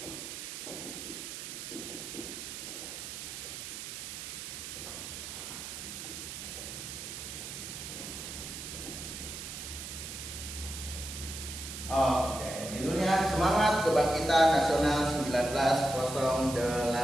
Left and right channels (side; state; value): right; noise; hiss, 8 dB below the sound